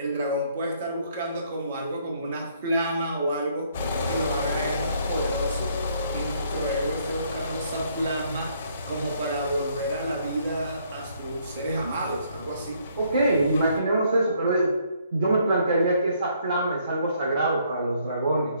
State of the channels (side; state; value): both; inverted; correlation -0.67